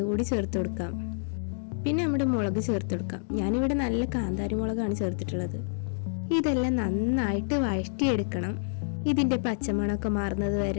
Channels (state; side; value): silent; right; digital silence